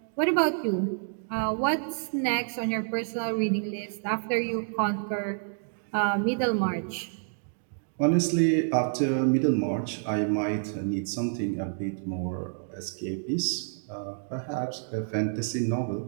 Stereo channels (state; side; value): silent; left; digital silence